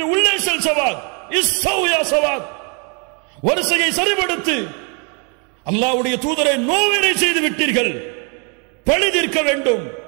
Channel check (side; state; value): left; quieter; 35.8 dB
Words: உள்ளே செல் சவாத், இஸ்ஸௌ யா சவாத், வரிசையை சரிபடுத்து, அல்லாஹ்வுடைய தூதரை நோவினை செய்து விட்டீர்கள், பழி தீர்க்க வேண்டும்.